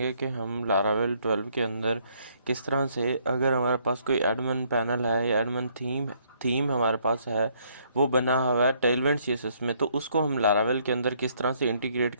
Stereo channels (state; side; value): inverted; both; correlation -0.67